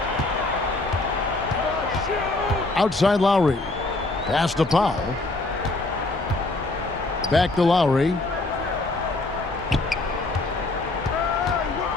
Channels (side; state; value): right; quieter; 3.0 dB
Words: Outside Lowry. Pass to Powell. Back to Lowry.